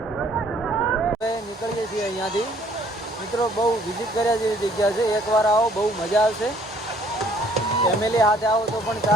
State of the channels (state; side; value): normal; both; correlation 0.60